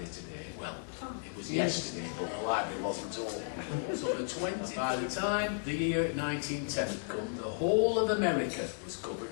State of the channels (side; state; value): right; silent; digital silence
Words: today. Well, it was yesterday, but the library wasn't open. So the 20th, by the time the year 1910 had come, the whole of America was